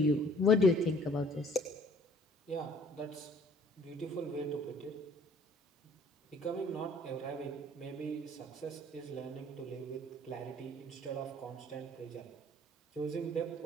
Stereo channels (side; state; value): both; normal; correlation 0.56